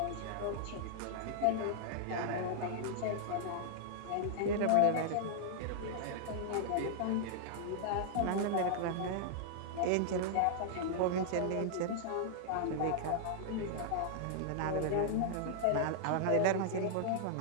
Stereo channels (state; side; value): different; both; correlation -0.01